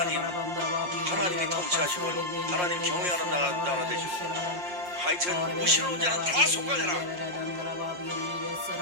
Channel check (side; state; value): left; late; 5.6 ms